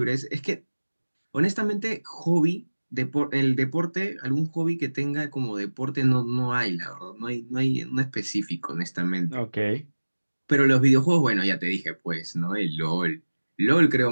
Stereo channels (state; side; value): inverted; both; correlation -1.00